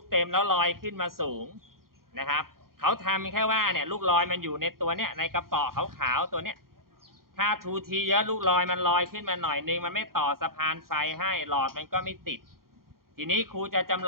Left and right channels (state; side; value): late; left; 0.92 ms